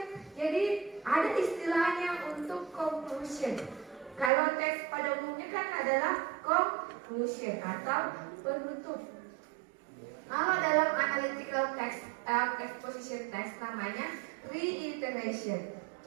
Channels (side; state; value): left; drops out; at 4.3 s